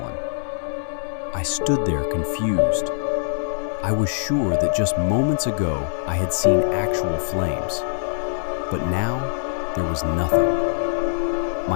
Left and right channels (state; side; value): silent; right; 63 dB below the other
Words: I stood there confused. I was sure that just moments ago I had seen actual flames, but now there was nothing.